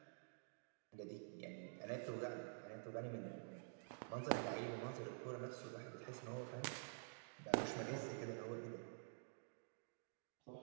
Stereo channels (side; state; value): left; silent; digital silence